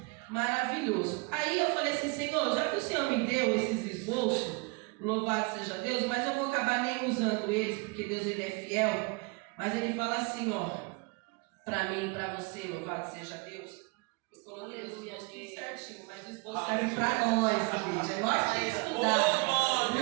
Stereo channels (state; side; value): quieter; left; 30.1 dB